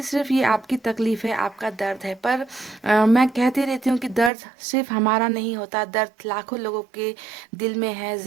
सिर्फ ये आपकी तकलीफ है, आपका दर्द है, पर मैं कहती रहती हूँ कि दर्द सिर्फ हमारा नहीं होता, दर्द लाखों लोगों के दिल में है,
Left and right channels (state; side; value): drops out; left; at 4.3 s